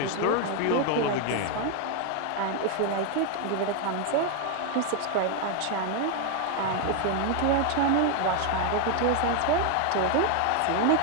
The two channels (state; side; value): different; both; correlation 0.01